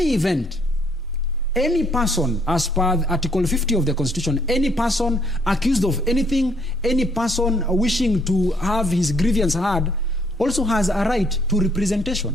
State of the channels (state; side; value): normal; both; correlation 0.67